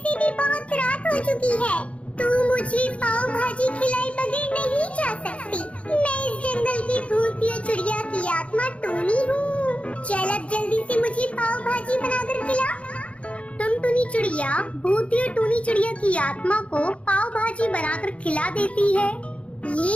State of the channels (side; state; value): right; late; 0.063 ms